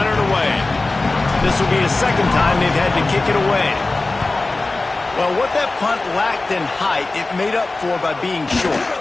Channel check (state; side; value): quieter; right; 3.2 dB